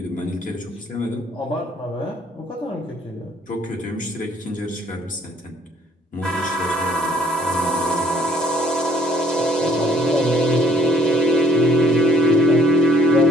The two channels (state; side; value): normal; both; correlation 0.60